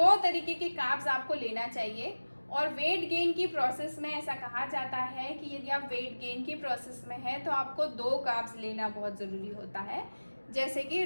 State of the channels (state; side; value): inverted; both; correlation -1.00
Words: तरीके के कार्ब्स आपको लेना चाहिए। और वेट गेन की प्रोसेस में ऐसा कहा जाता है कि यदि आप वेट गेन की प्रोसेस में हैं तो आपको 2 कार्ब्स लेना बहुत ज़रूरी होता है, जैसे कि